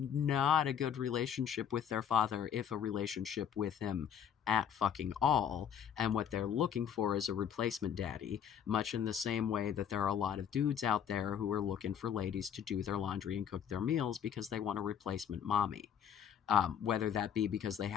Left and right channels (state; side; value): quieter; right; 8.6 dB